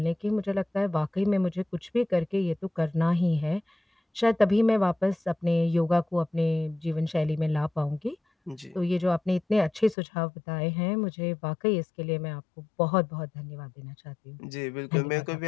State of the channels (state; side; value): drops out; right; at 10.0 s